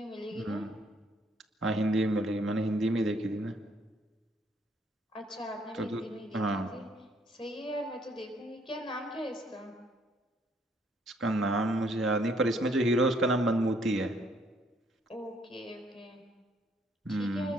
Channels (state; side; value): normal; both; correlation 0.66